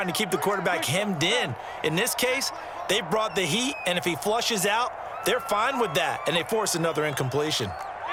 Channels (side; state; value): both; identical; correlation 1.00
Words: to keep the quarterback hemmed in. In this case, they brought the heat, and if he flushes out, they're fine with that, and they force another incompletion.